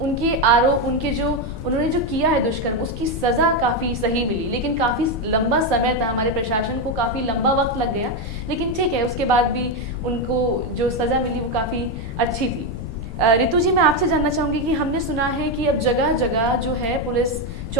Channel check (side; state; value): left; noise; rumble, 8 dB below the sound